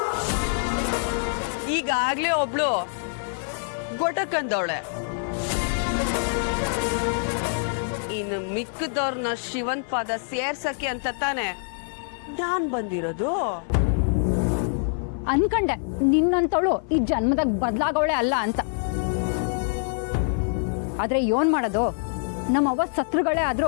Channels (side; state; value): right; silent; 55 dB below the other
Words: ಈಗಾಗ್ಲೇ ಒಬ್ಳು ಗೊಟಕಂದವಳೆ. ಇನ್ನು ಮಿಕ್ಕದವ್ರನ್ನ ಶಿವನ್ ಪಾದ ಸೇರ್ಸಕ್ಕೆ ಅಂತ ತಾನೆ ನಾನ್ ಬಂದಿರೋದು. ಅನ್ಕಂಡೆ ನಿನ್ನಂತವಳು ಈ ಜನ್ಮದಾಗ ಬದಲಾಗವಳೆ ಅಲ್ಲ ಅಂತ. ಆದ್ರೆ ಏನ್ ಮಾಡೋದು, ನಮ್ಮವ್ವ ಸತ್ರುಗಳೇ